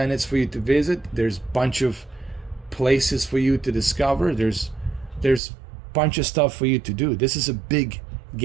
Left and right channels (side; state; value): left; drops out; at 5.4 s